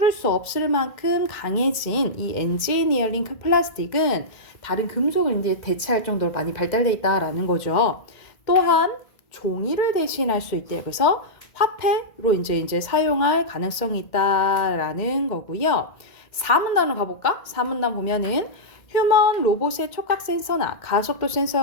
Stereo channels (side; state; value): right; late; 2.1 ms